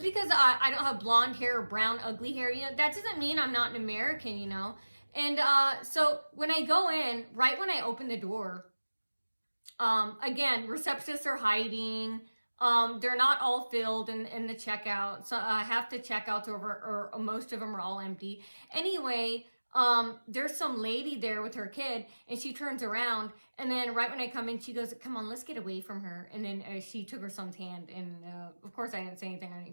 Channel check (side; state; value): both; inverted; correlation -1.00